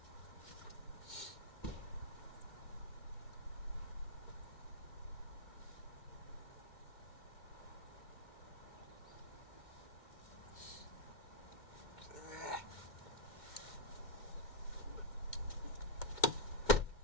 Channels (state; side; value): late; right; 2.1 ms